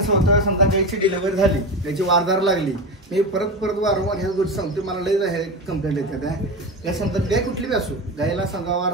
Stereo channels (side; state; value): both; normal; correlation 0.23